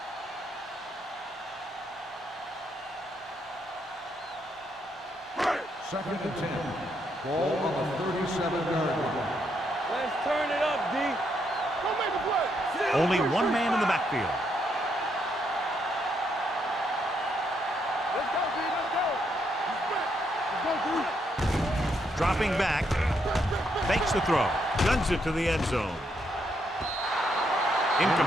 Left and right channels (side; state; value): both; normal; correlation 0.76